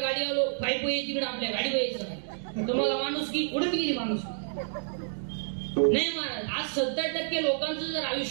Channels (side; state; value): left; silent; digital silence